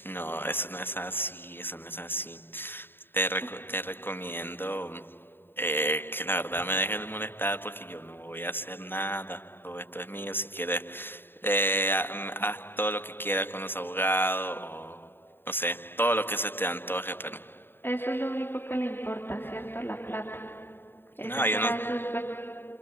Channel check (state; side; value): late; right; 0.10 ms